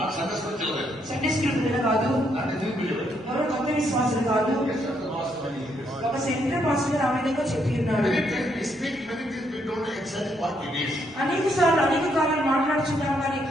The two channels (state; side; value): normal; both; correlation 0.74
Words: సండే స్కూల్ పిల్లలు కాదు, ఎవరు కొత్త విశ్వాసులు కాదు, ఒక సెంటర్ పాస్టర్ ఆ విధంగా చెప్పి ఉన్నాడు. అనేక సార్లు అనేక కాలాలు మాట్లాడుచున్నాం కానీ